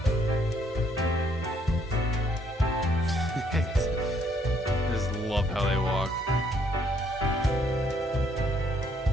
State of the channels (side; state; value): both; normal; correlation 0.69